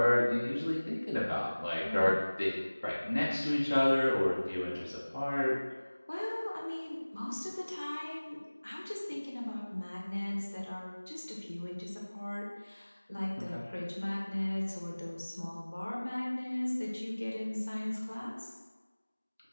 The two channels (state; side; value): inverted; both; correlation -1.00